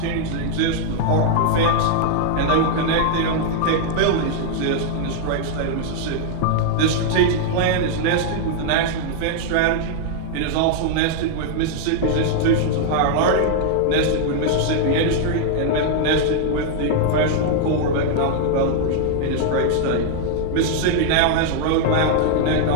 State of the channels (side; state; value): both; different; correlation -0.01